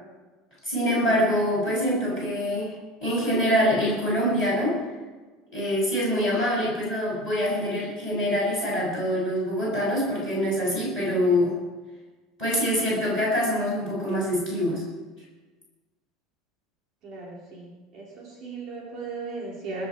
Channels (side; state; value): both; normal; correlation 0.35